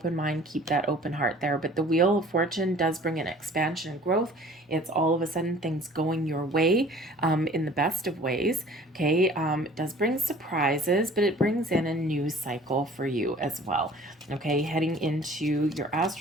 mind, keep that open heart there. But the Wheel of Fortune does bring an expansion and growth. It's all of a sudden things going your way, in the best of ways. Okay, it does bring surprises, but it brings in a new cycle for you as well. Okay, heading into your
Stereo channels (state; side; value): normal; both; correlation 0.49